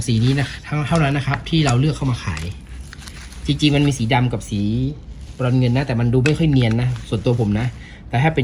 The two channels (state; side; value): identical; both; correlation 1.00